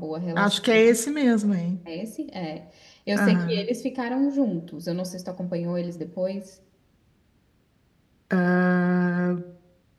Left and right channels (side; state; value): both; identical; correlation 1.00